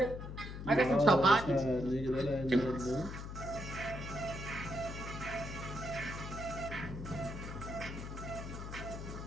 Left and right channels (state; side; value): noise; left; hum, 8 dB below the sound